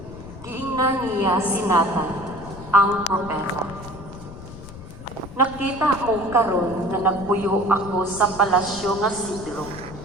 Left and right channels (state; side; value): noise; left; rumble, 14 dB below the sound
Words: Giingnan niya si Nathan ang propeta. Nakita mo karon nga nagpuyo ako sa palasyo nga sidro.